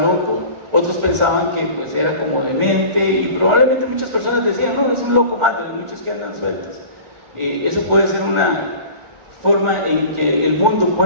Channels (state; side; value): late; left; 1.4 ms